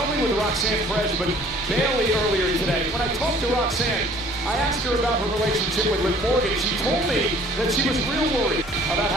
only with Roxanne Perez, but Bailey earlier today. When I talked to Roxanne, I asked her about her relationship with Liv Morgan. She told me that she was real worried about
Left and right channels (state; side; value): normal; both; correlation 0.54